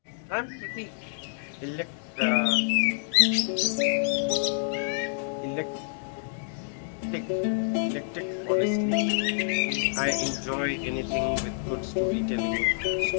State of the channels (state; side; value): silent; right; digital silence